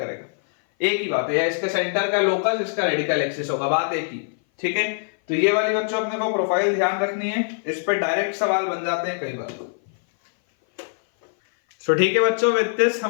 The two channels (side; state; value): right; silent; 58 dB below the other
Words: एक ही बात है, या इसके सेंटर का लोकस इसका रेडिकल एक्सिस होगा, बात एक ही. ठीक है, तो ये वाली बच्चों अपने को प्रोफाइल ध्यान रखनी है, इस पे डायरेक्ट सवाल बन जाते हैं कई बार. तो ठीक है बच्चों, विद दिस